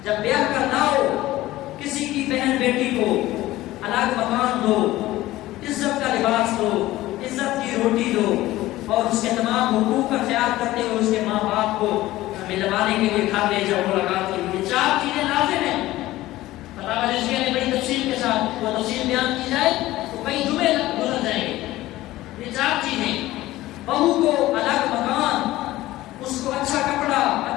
جب بیاہ کرنا ہو, کسی کی بہن بیٹی کو الگ مکان دو, عزت کا لباس دو, عزت کی روٹی دو, اور اس کے تمام حقوق کا خیال کرتے ہوئے اس کے ماں باپ کو ملوانے کے لیے گھر لے جاؤ ملاقات کے لیے. 4 چیزیں لازم ہیں. فتاوی رضویہ نے بڑی تفصیل کے ساتھ وہ تفصیل بیان کی جائے تو کئی جمعے گزر جائیں گے. یہ 4 چیزیں, بہو کو الگ مکان, اس کو اچھا کپڑا,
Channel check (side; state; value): right; quieter; 16.6 dB